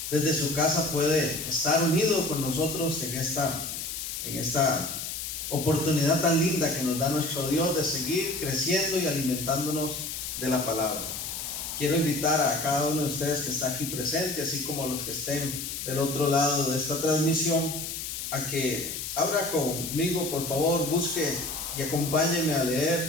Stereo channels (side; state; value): left; noise; hiss, 6 dB below the sound